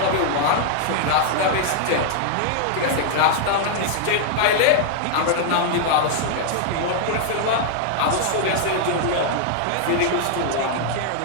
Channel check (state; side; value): different; both; correlation -0.01